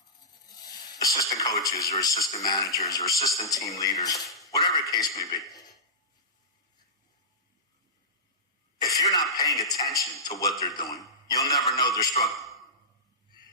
assistant coaches or assistant managers or assistant team leaders, whatever the case may be, if you're not paying attention to what they're doing, you'll never know they're struggling.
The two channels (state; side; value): normal; both; correlation -0.16